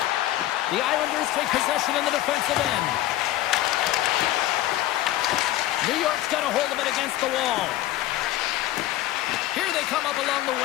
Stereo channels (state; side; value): quieter; right; 14.8 dB